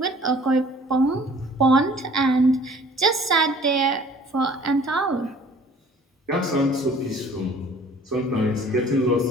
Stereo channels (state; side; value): normal; both; correlation 0.52